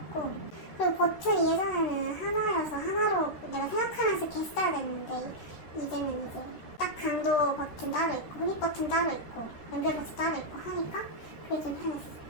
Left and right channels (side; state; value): right; late; 13 ms